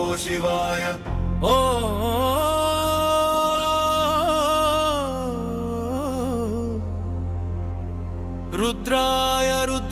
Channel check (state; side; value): identical; both; correlation 1.00